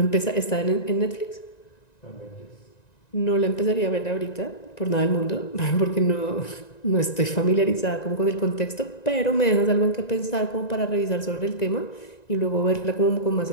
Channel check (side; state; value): right; late; 1.9 ms